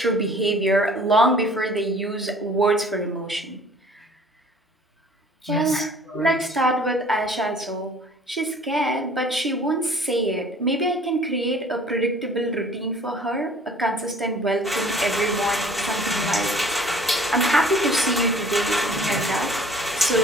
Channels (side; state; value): both; normal; correlation 0.52